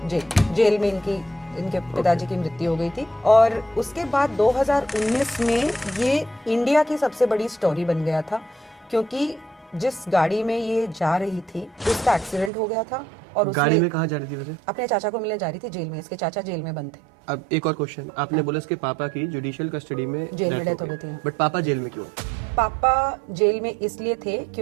में इनके पिताजी की मृत्यु हो गई थी। और उसके बाद 2019 में ये इंडिया की सबसे बड़ी स्टोरी बन गया था, क्योंकि जिस गाड़ी में ये जा रही थी उसका एक्सीडेंट हो गया था। और गाड़ी में कहाँ जा रही थी वैसे? अपने चाचा को मिलने जा रही थी जेल में। इसके चाचा जेल में बंद थे। अब एक और क्वेश्चन, आपने बोला इसके पापा की जुडिशियल कस्टडी में जेल में डेथ हो गई थी। बट पापा जेल में क्यों? पापा जेल में इसलिए थे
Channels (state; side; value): drops out; left; at 12.5 s